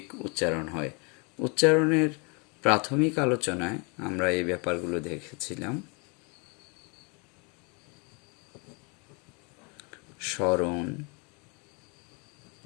উচ্চারণ হয়। উচ্চারণের প্রাথমিক আলোচনায় আমরা এই ব্যাপারগুলো দেখেছিলাম। স্মরণ,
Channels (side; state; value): right; quieter; 32.5 dB